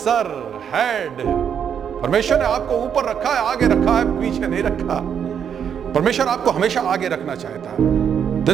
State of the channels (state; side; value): quieter; left; 8.0 dB